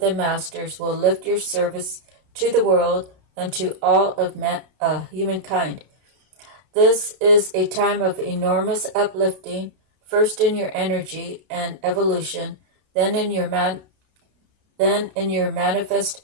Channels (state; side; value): late; left; 32 ms